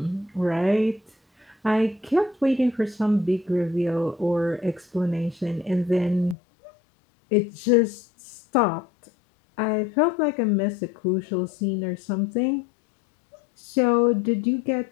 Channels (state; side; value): drops out; right; at 6.4 s